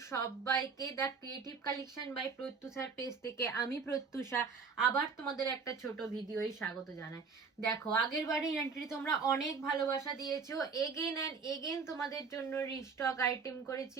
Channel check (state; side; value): quieter; left; 5.2 dB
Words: সবাইকে the creative collection by প্রত্যুষার পেজ থেকে আমি প্রত্যুষা আবার তোমাদের একটা ছোট ভিডিওই স্বাগত জানাই। দেখো আগের বারে এন্ট্রি তোমরা অনেক ভালোবাসা দিয়েছো, এগেন অ্যান্ড এগেন তোমাদের জন্য রিস্টক আইটেম